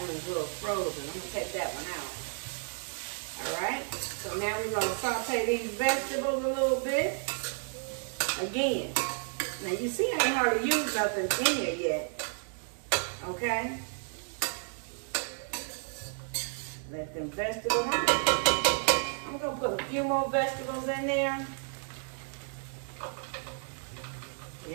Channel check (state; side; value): silent; left; 56 dB below the other